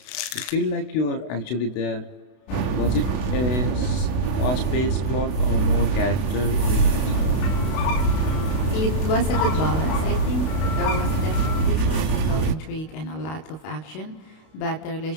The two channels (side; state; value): right; late; 31 ms